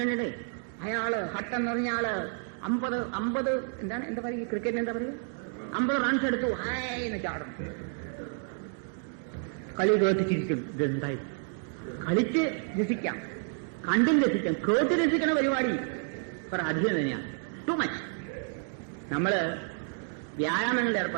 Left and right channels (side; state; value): left; silent; 58 dB below the other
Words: അയാള് ഹട്ട് എന്ന് പറഞ്ഞ ആള് 50 എന്താ പറയുക, ക്രിക്കറ്റിന് എന്താ പറയുക, 50 റൺസ് എടുത്തു, ഹായ് എന്ന് ചാടും. കളി കേട്ട് ചിരിക്കും. ഇതെന്തായി? കളിച്ച് രസിക്കാം, കണ്ടും രസിക്കാം. കേട്ട് രസിക്കണ പരിപാടി കുറെ അധികം തന്നെയാണ്. Too much. നമ്മള് വ്യായാമങ്ങളിൽ